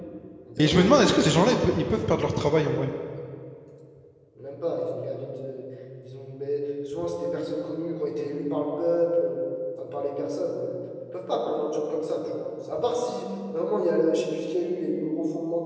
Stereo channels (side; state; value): both; identical; correlation 1.00